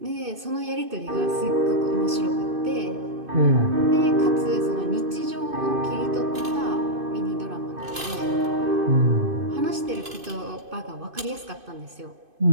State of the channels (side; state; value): left; late; 2.5 ms